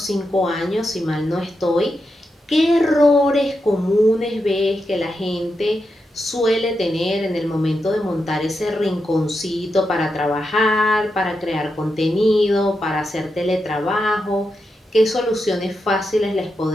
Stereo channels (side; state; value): both; normal; correlation 0.87